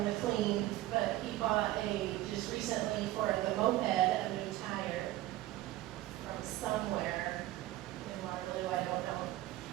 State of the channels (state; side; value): quieter; left; 16.0 dB